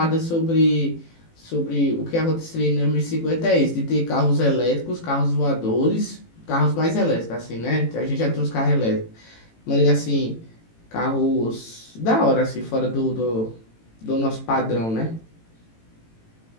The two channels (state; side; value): late; right; 18 ms